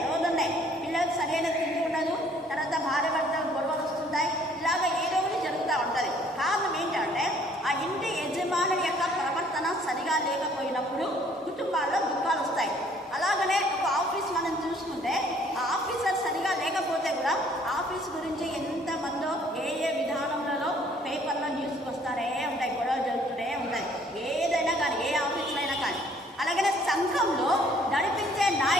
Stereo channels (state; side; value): normal; both; correlation 0.60